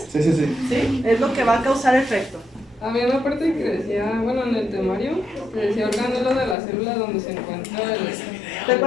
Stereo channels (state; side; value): drops out; right; at 6.6 s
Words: Sí, sí, sí. ¿Sí? Es lo que va a causar efecto. Había una parte que decía, bueno, en el temario, que decía organelo de la célula donde se encuentra el...